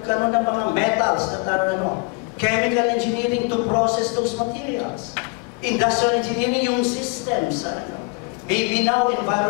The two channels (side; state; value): right; quieter; 31.4 dB